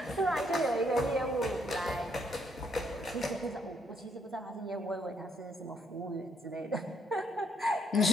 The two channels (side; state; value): both; normal; correlation 0.71